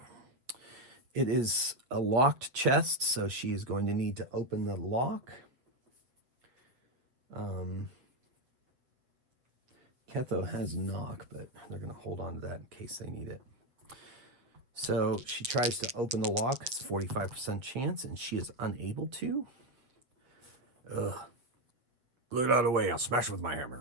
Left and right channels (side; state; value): left; late; 7.7 ms